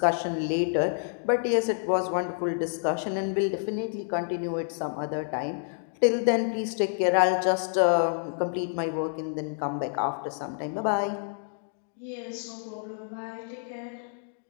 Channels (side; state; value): right; silent; digital silence